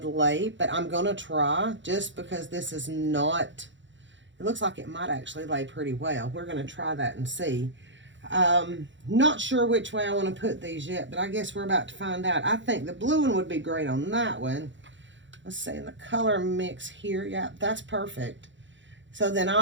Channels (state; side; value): late; left; 0.54 ms